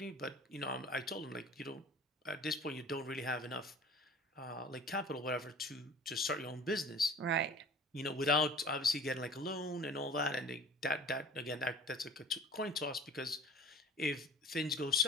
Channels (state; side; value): normal; both; correlation 0.44